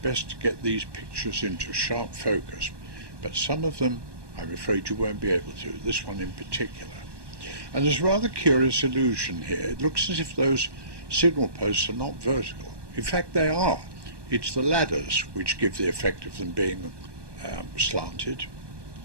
to get these pictures into sharp focus, but some of them, I'm afraid you won't be able to, this one in particular. And there's a rather curious illusion here. It looks as if those signal posts are not vertical. In fact, they are. It's the ladders which give the effect of them being slanted.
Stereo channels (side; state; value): left; late; 1.2 ms